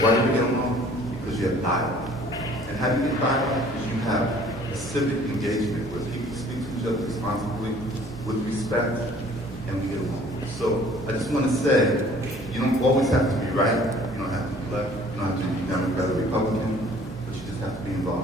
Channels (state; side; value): normal; both; correlation 0.53